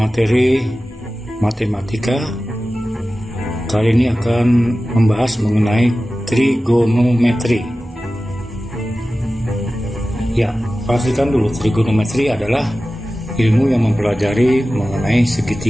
matematika. Kali ini akan membahas mengenai trigonometri. Ya, pastikan dulu, trigonometri adalah ilmu yang mempelajari mengenai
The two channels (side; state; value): both; normal; correlation 0.95